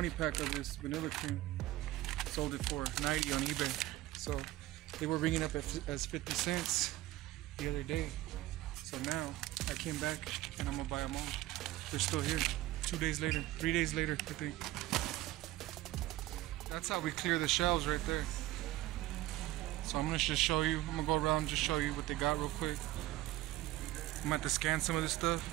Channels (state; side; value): quieter; left; 16.3 dB